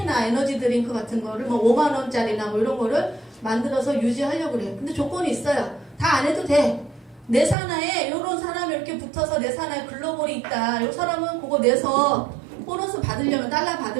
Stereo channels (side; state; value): left; drops out; at 7.6 s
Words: 에너지 드링크 같은 거를 뭐 5만 원짜리나 뭐 이런 거를 만들어서 유지하려고 그래요. 근데 조건이 있어요. 다 안 해도 돼. 내 산하에 이런 사람이 이렇게 붙어서 내 산하에 글로벌이 있다. 이 사람은 그거 내서 보너스 받으려면 달러